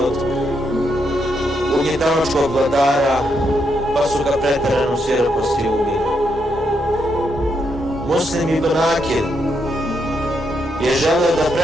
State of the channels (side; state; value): both; normal; correlation 0.79